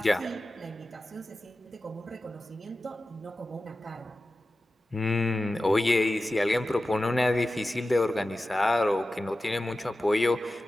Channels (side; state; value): both; normal; correlation 0.94